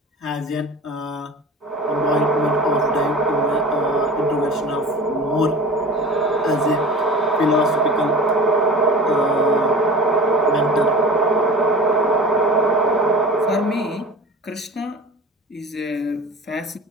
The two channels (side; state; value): both; normal; correlation 0.37